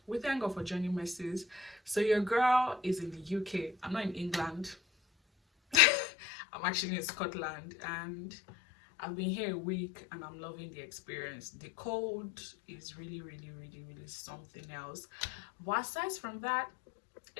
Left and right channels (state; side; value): drops out; right; at 5.8 s